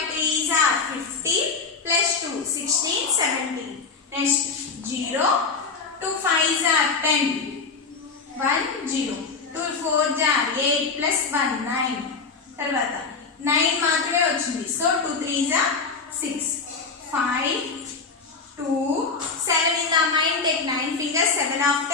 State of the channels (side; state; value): right; quieter; 4.7 dB